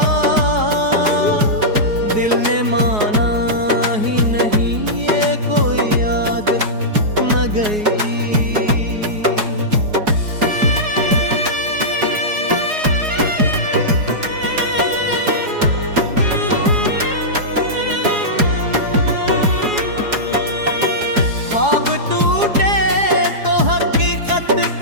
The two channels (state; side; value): late; left; 4.8 ms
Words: दिल ने माना ही नहीं, ये कोई आदत न गई। ख्वाब टूटे तो हकीकत